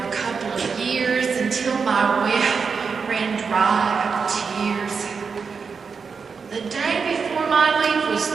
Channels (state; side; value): quieter; left; 5.5 dB